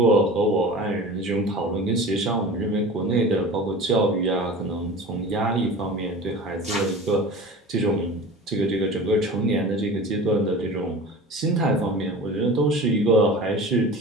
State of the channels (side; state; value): both; normal; correlation 0.37